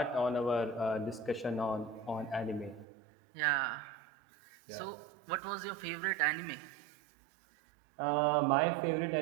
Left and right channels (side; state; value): left; drops out; at 2.9 s